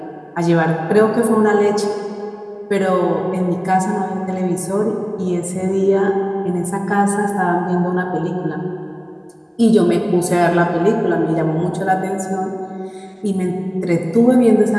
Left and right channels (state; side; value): identical; both; correlation 1.00